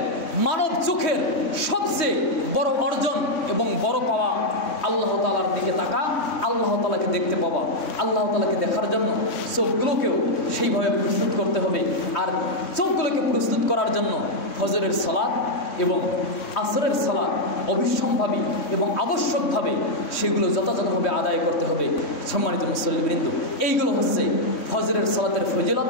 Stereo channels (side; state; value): right; late; 3.6 ms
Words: মানব চোখের সবচেয়ে বড় অর্জন এবং বড় পাওয়া আল্লাহ তাআলার দিকে তাকা, আল্লাহ তাআলাকে দেখতে পাওয়া। আল্লাহ তাআলাকে দেখার জন্য চোখগুলোকেও সেইভাবে প্রস্তুত করতে হবে। আর চোখগুলোকে প্রস্তুত করার জন্য ফজরের সালাত এবং আসরের সালাত অবিসম্ভাবী এবং আবশ্যকভাবে সেগুলো যথাযথভাবে আদায় করতে হবে। সম্মানিত মুসল্লিবৃন্দ, এইগুলো হচ্ছে ফজরের সালাতের ফজিলত।